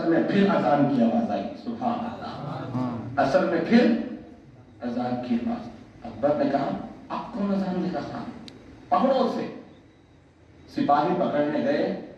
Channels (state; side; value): identical; both; correlation 1.00